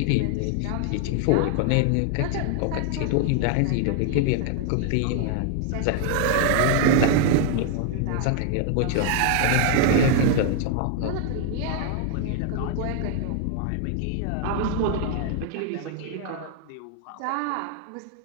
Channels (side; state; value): both; different; correlation 0.00